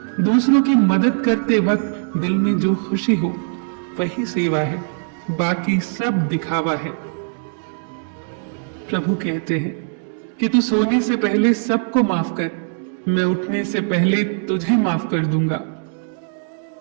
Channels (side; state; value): left; silent; digital silence